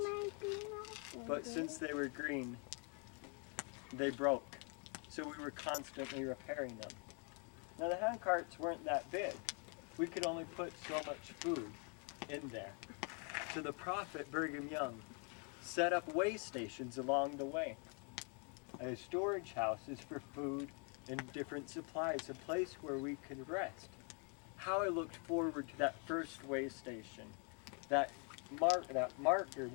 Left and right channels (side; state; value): right; quieter; 37.8 dB